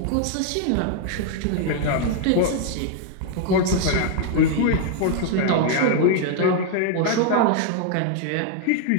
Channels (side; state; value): both; different; correlation 0.00